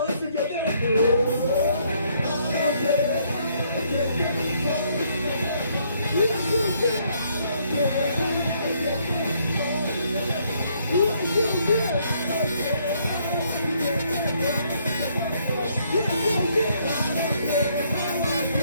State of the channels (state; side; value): inverted; both; correlation -0.69